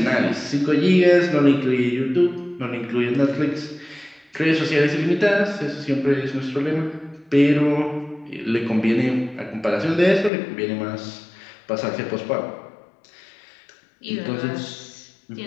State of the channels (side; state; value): right; drops out; at 10.3 s